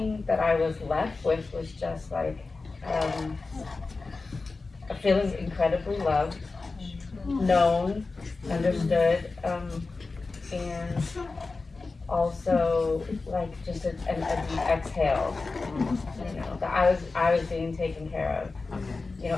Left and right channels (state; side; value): quieter; right; 3.8 dB